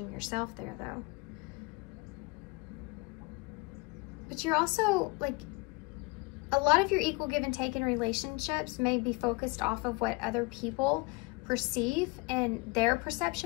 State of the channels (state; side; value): quieter; right; 26.5 dB